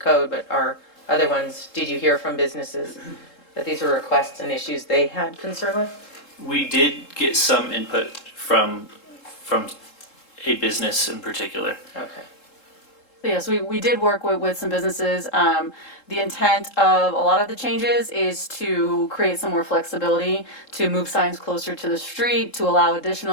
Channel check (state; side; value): late; right; 3.7 ms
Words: but are other ones, did you hear from businesses that these were requests and issues they had concern with? We did get some input from a business in particular. Okay. So yes, we did work with some businesses. The intent of a lot of the changes is to create some more flexibility, to move signs closer to the street, to allow